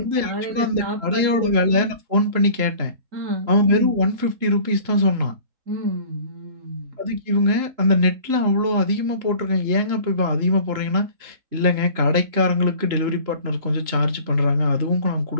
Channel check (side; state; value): left; late; 3.0 ms